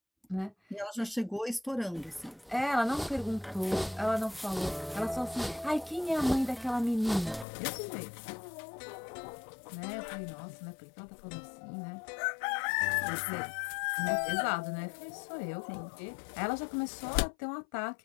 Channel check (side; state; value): right; drops out; at 7.5 s